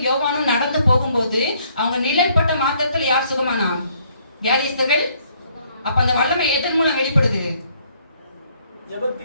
யோவானும் நடந்து போகும்போது அவங்க நிழல்பட்ட மாத்திரத்துல யார் சுகமானா? வியாதிஸ்தர்கள். அப்ப அந்த வல்லமை எதன் மூலம் வெளிப்படுது?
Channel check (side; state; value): both; inverted; correlation -0.66